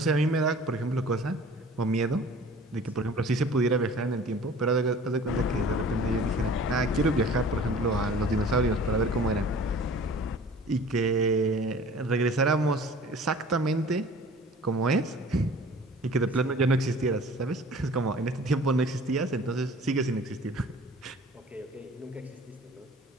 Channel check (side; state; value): both; normal; correlation 0.46